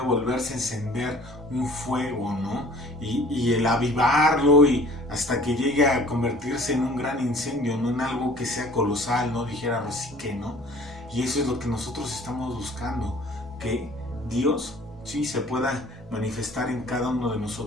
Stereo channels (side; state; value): both; normal; correlation 0.50